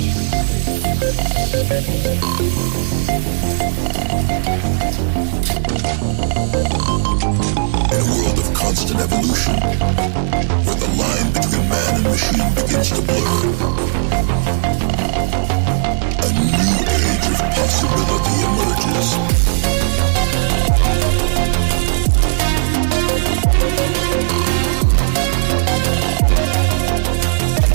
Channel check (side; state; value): left; silent; digital silence